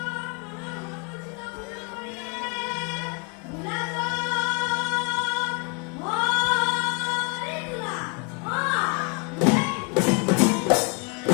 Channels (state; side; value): quieter; right; 33.4 dB